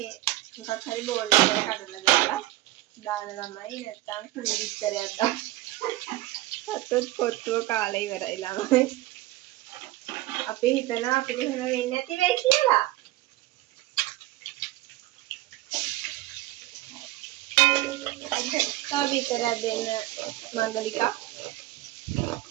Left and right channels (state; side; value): quieter; left; 17.2 dB